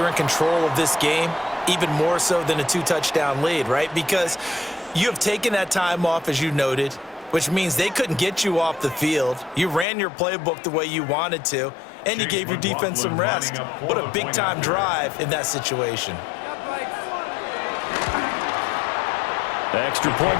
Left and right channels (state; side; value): drops out; right; at 9.9 s